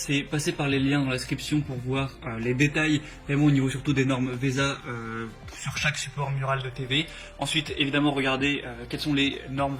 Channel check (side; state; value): both; identical; correlation 1.00